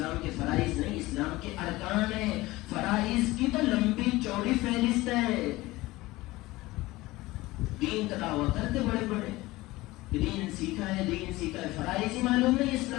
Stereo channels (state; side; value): quieter; right; 19.4 dB